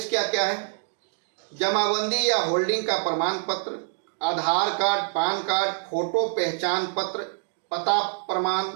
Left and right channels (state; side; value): silent; left; digital silence